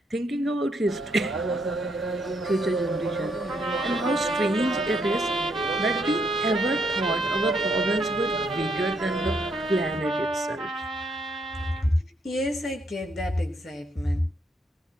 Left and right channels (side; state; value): both; normal; correlation 0.74